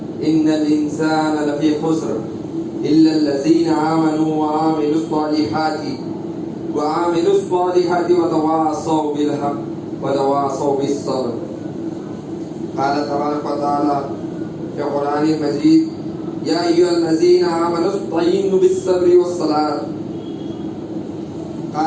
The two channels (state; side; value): identical; both; correlation 1.00